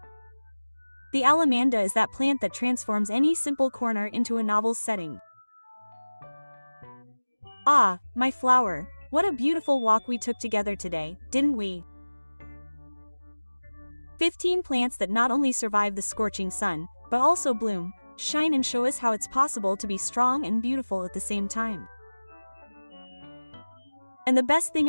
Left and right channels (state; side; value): inverted; both; correlation -1.00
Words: The alamanda is that plant that transforms any simple corner into a novel setting. Ah, my flower, what a beautiful walk we took together today, didn't we? 15 plants that not only survive the scorching sun, but also bloom, shine and show us how it's possible to be strong and beautiful at the same time. And the best thing